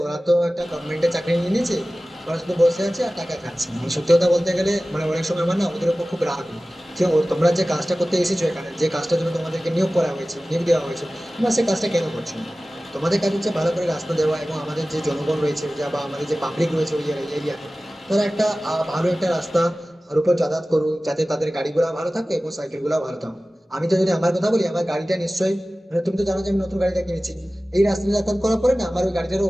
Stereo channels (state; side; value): normal; both; correlation 0.97